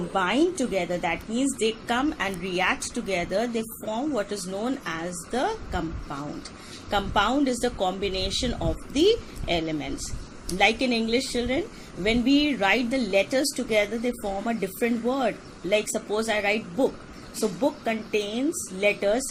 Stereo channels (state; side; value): identical; both; correlation 1.00